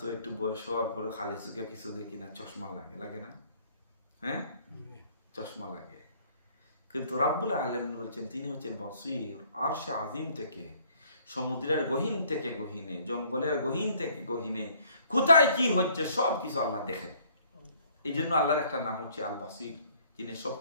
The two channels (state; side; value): inverted; both; correlation -0.60